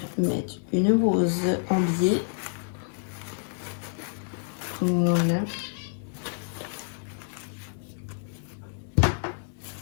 mettre une rose en biais. Voilà.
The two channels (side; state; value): right; silent; 59 dB below the other